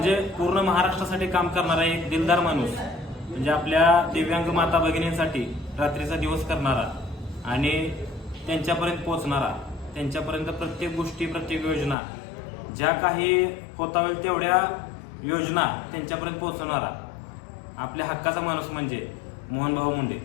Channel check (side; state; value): right; drops out; at 12.0 s